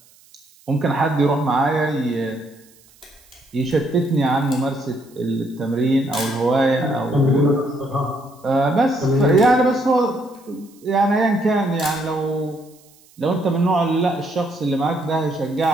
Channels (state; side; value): noise; right; hiss, 29 dB below the sound